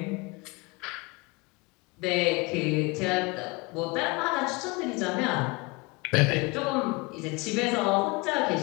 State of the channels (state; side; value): quieter; right; 26.0 dB